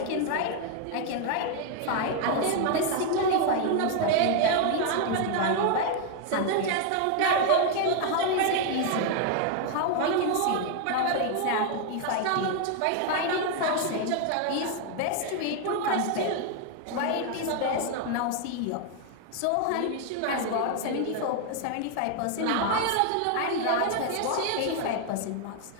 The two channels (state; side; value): different; both; correlation 0.00